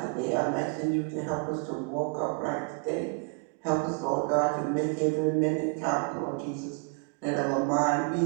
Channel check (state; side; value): quieter; left; 34.5 dB